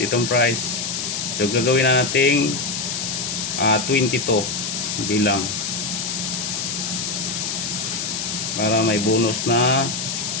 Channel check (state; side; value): noise; left; hiss, 3 dB below the sound